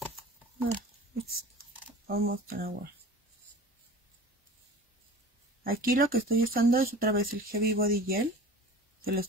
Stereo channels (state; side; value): normal; both; correlation 0.39